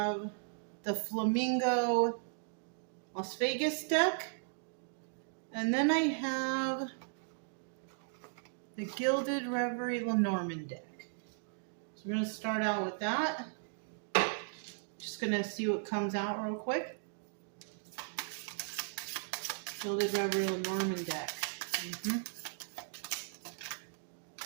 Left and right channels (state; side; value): silent; left; digital silence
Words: the Flamingo Las Vegas deck, and then I have the Gilded Reverie Lenormand deck. So we're going to start out with that. Just going to see what comes out real quick. Gilded Reverie Lenormand deck.